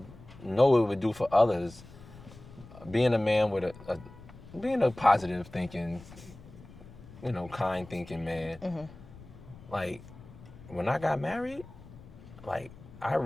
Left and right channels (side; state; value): left; noise; rumble, 19 dB below the sound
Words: know it would do for others, being a man with being a positive thinking, kind thinking man. Like when I got married, like I